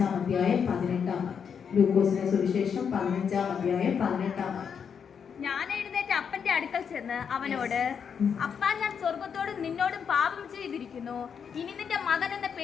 അധ്യായം 18-ാം വാക്യം. ലൂക്കോസിന്റെ സുവിശേഷം 15-ാം അധ്യായം 18-ാം വാക്യം. ഞാൻ എഴുന്നേറ്റ് അപ്പന്റെ അടുക്കൽ ചെന്ന് അവനോട്, അപ്പാ, ഞാൻ സ്വർഗത്തോടും നിന്നോടും പാപം ചെയ്തിരിക്കുന്നു. ഇനി നിന്റെ മകൻ എന്ന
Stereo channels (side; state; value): right; quieter; 7.0 dB